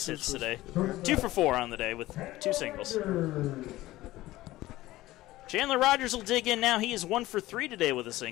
hits today. 2 for 4 on the day with 2 singles. Chandler Rogers will dig in now. He is 1 for 3 today with a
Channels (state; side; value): quieter; right; 17.0 dB